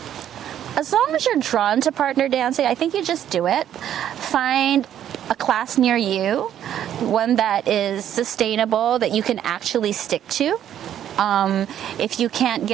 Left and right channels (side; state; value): left; quieter; 10.5 dB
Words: As long as you're drawn to partner dancing, I think you just do it. Find a class near you, one that is sustainable, that you can actually stick to. If you can't